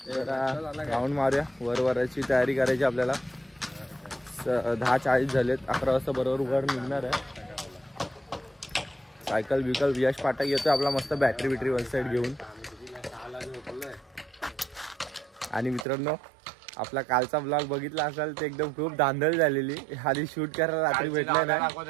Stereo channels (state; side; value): drops out; left; at 15.9 s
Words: जरा राऊंड मारूया. वराची तयारी करायची आपल्याला. 10:40 झालेत. 11 वाजता बरोबर वर निघणार आहे. सायकल बिकल यश पाठक येतोय आपला मस्त बॅटरी वन साइड घेऊन. आणि मित्रांनो आपला कालचा ब्लॉग बघितला असाल ते एकदम खूप धांदल झालेली. आधी शूट करायला रात्री भेटलंय ना.